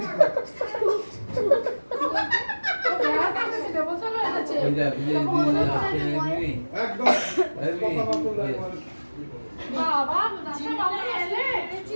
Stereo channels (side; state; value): both; inverted; correlation -1.00